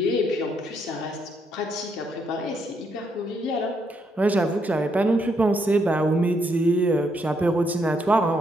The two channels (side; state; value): both; normal; correlation 0.75